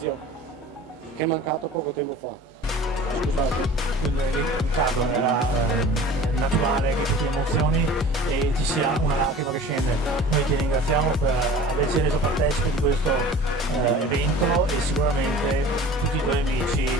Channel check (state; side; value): normal; both; correlation 0.42